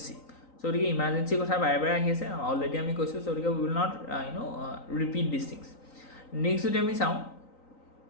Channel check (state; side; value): late; right; 3.9 ms